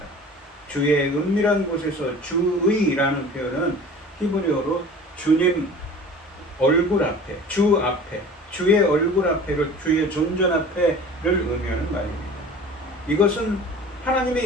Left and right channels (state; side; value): normal; both; correlation 0.42